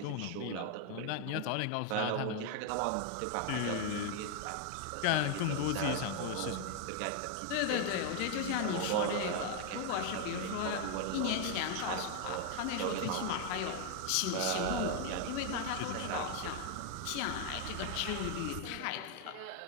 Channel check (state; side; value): different; both; correlation 0.01